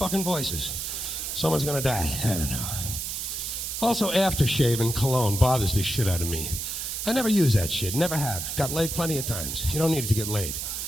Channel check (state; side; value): noise; right; hiss, 4 dB below the sound